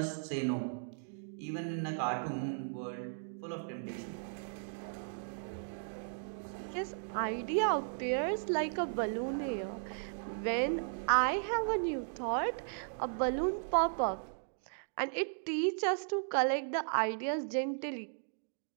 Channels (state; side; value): silent; left; digital silence